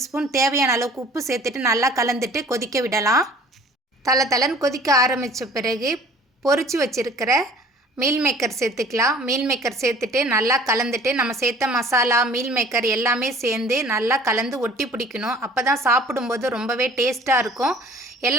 ஸ்பூன், தேவையான அளவுக்கு உப்பு சேர்த்துட்டு நல்லா கலந்துட்டு கொதிக்க விடலாம். தளன்னு கொதிக்க ஆரம்பித்த பிறகு பொரிச்சு வச்சுருக்கிற மீல் மேக்கர் சேர்த்துக்கலாம். மீல் மேக்கர் சேர்த்துட்டு நல்லா கலந்துட்டு நம்ம சேர்த்த மசாலா மீல் மேக்கர் எல்லாமே சேர்ந்து நல்லா கலந்து ஒட்டி பிடிக்கணும். அப்போ தான் சாப்பிடும்போது ரொம்பவே டேஸ்ட்டாக இருக்கும்.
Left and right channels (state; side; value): normal; both; correlation 0.50